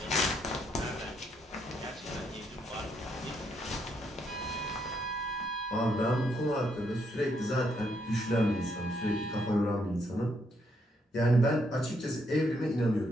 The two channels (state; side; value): normal; both; correlation 0.75